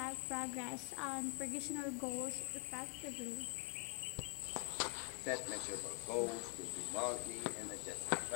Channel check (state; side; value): quieter; right; 37.6 dB